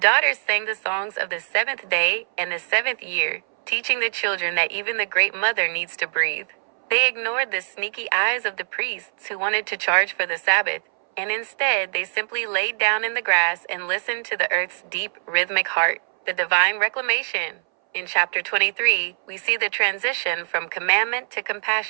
sang the songs of the 7th day and the 7th year, teaching the children that even the great mother needs to breathe. They ignored the sneaky eyes of the priests who wanted to charge for the Sabbath, and instead they simply laid down in the grass and listened to the earth's deep, rhythmic heart, the divine reclamation. In chapter 23, we see the transition from commandment to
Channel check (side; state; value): left; silent; 60 dB below the other